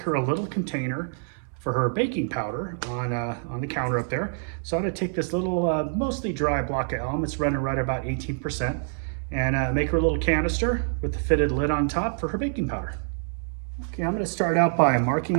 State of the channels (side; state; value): left; silent; 61 dB below the other